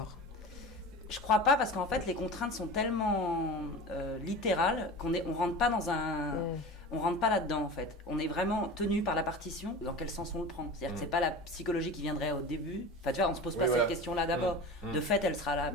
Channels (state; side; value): normal; both; correlation 0.33